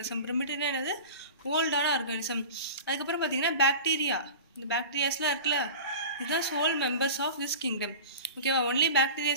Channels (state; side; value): inverted; both; correlation -0.35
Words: ப்ரிமிட்டிவ்னா என்னது? ஓல்டான ஆர்கானிசம். அதுக்கப்புறம் பார்த்தீங்கன்னா பாக்டீரியா. இந்த பாக்டீரியாஸ்லாம் இருக்குல்ல, இதுதான் sole members of this kingdom. ஓகேவா? ஒன்லி